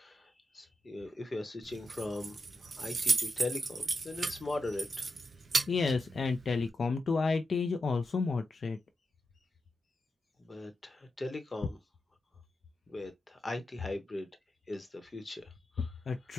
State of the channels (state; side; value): normal; both; correlation 0.88